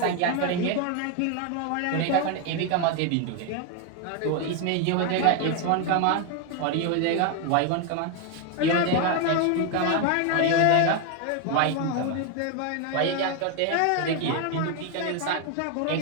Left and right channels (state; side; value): different; both; correlation 0.01